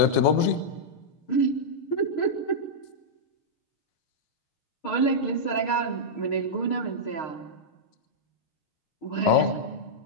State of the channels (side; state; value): right; late; 6.5 ms